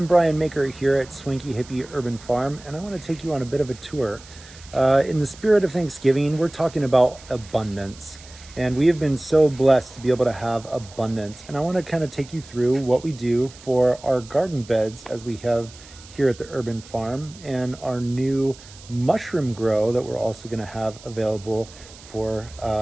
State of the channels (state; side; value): noise; right; hiss, 20 dB below the sound